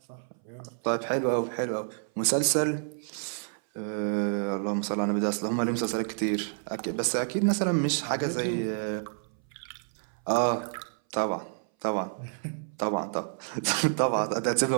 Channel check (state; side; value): silent; left; 58 dB below the other